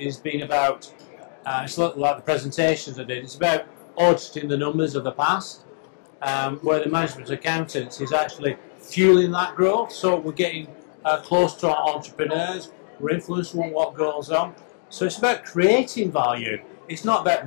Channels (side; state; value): right; silent; digital silence